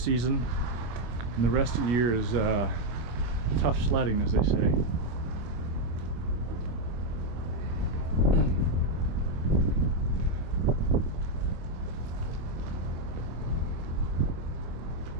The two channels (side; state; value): left; late; 25 ms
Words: season, and the rest of the year is tough sledding, as they say.